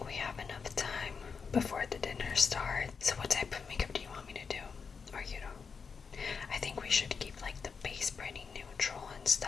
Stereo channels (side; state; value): right; quieter; 5.6 dB